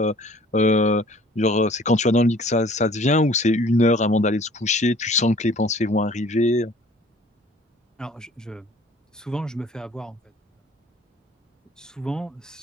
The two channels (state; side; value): normal; both; correlation 0.52